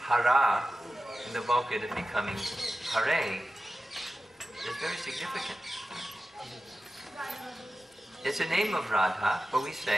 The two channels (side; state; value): both; normal; correlation 0.94